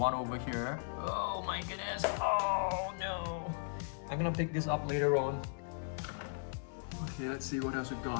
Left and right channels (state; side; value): silent; right; digital silence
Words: over here. Oh my goodness. Oh no. I'm gonna pick this up later on. Okay, let's see what else we've